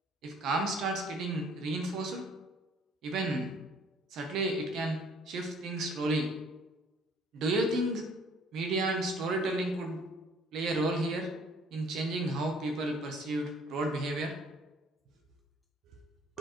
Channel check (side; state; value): both; normal; correlation 0.57